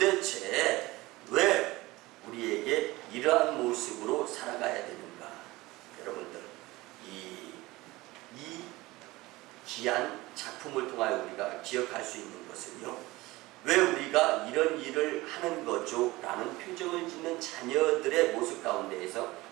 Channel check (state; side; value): quieter; left; 20.1 dB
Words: 왜 우리에게 이러한 모습으로 살아가야 되는가? 여러분들, 이 귀한 작품을 통하여 우리가 기억할 수 있는 것은요, 왜 우리가 이런 일을 하는 거죠? 라는 표정을 짓는 자녀들의 모습 가운데에서